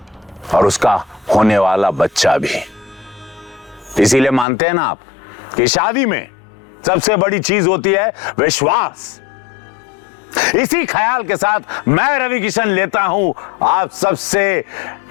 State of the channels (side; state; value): right; drops out; at 4.5 s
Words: और उसका होने वाला बच्चा भी। इसीलिए मानते हैं ना आप कि शादी में सबसे बड़ी चीज होती है विश्वास। इसी ख्याल के साथ मैं रवि किशन लेता हूं आप सबसे